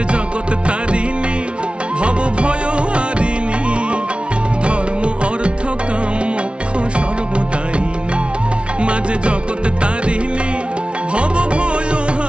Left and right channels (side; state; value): left; late; 0.059 ms